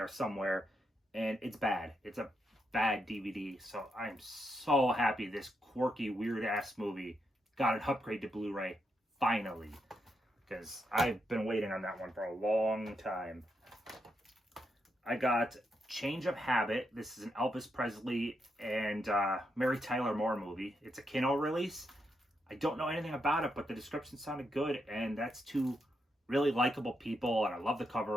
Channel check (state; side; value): normal; both; correlation 0.82